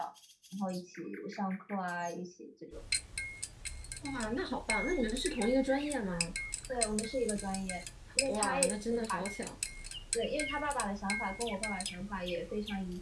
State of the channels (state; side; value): identical; both; correlation 1.00